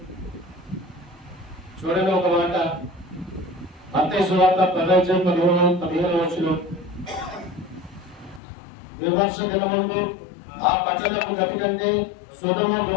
చూడండి ఒక మాట, మత్తయి సువార్త 10:15 విమర్శ దినమందు ఆ పట్టణపు గతి కంటే సొదొమ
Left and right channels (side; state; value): right; drops out; at 8.4 s